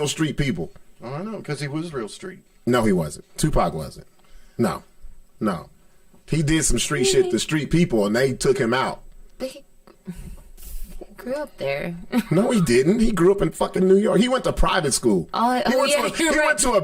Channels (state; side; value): identical; both; correlation 1.00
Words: street people. Oh, I know, because he was real street. No, he wasn't. Tupac wasn't. No. He did some street shit to street people, and they took him out. But he grew up there. No, he didn't. He grew up in fucking New York. He went to private school. He went to a